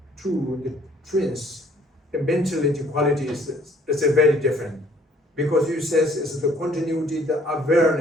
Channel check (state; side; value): normal; both; correlation 0.59